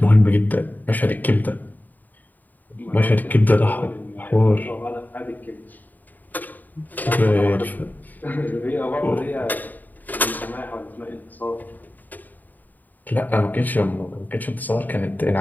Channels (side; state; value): right; late; 0.085 ms